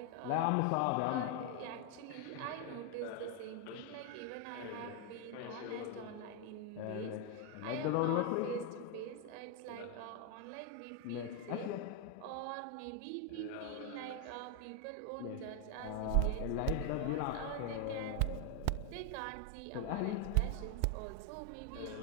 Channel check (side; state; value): both; different; correlation 0.01